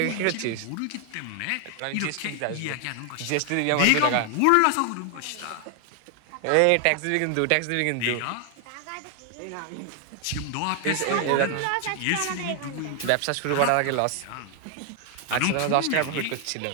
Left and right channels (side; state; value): both; different; correlation 0.00